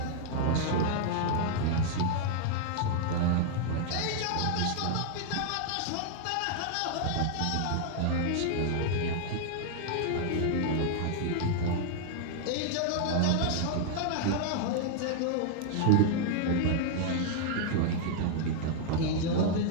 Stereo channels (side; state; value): both; different; correlation -0.01